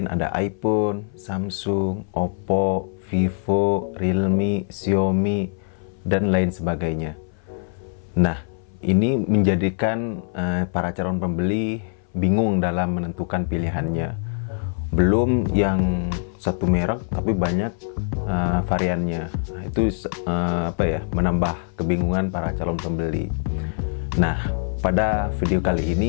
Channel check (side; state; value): right; silent; 59 dB below the other